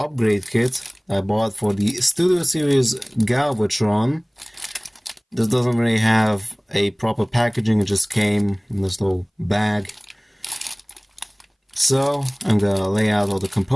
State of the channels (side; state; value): both; identical; correlation 1.00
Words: kit I bought for the Studio Series Galvatron. This doesn't really have a proper packaging, it just came in this little bag. So I'm gonna lay out all the